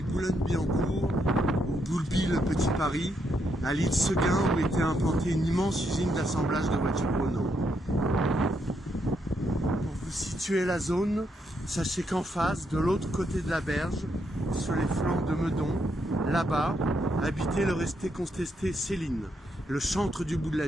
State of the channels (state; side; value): normal; both; correlation 0.78